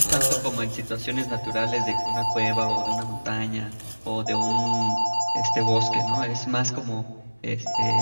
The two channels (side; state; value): both; inverted; correlation -1.00